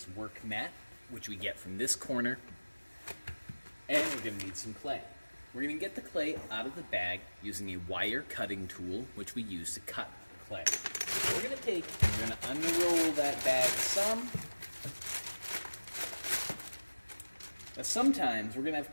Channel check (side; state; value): both; inverted; correlation -1.00